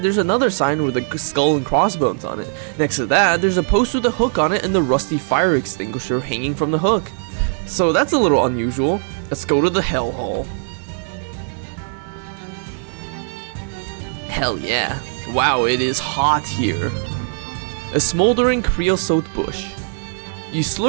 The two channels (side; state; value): left; silent; 66 dB below the other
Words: there's another sign with a skull and crossbones on it. Next to that, there's a post with a hook on it and the rusty fire extinguisher hanging from the hook. So that's a little unusual. Let's go to the hell hole. Hell yeah. Wow, it is hot here. A smoldering creosote bush. You